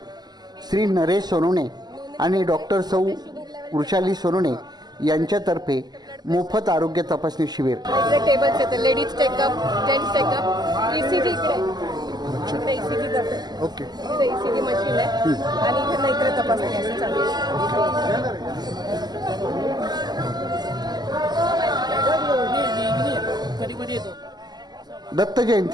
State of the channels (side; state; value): left; late; 0.20 ms